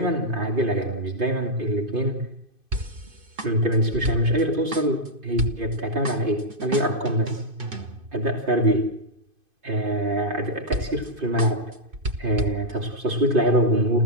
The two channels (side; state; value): left; late; 2.5 ms